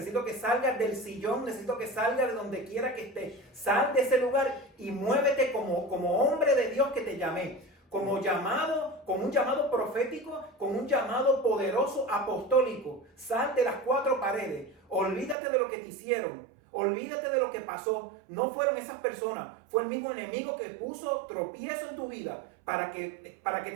que salgas del sillón, necesito que salgas de donde quiera que estés. Sal de ese lugar y muévete como hombre de Dios que te llamé. Con un llamado profético, con un llamado poderoso apostólico. Sal de las cuatro paredes, olvídate de lo que te hicieron, olvídate de lo que pasó. No fueron esas personas, fue el mismo enemigo que puso tropiezo en tu vida para que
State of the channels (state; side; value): drops out; left; at 15.4 s